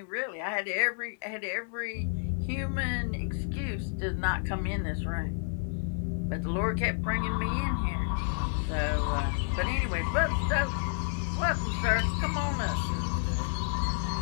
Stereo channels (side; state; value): right; silent; 58 dB below the other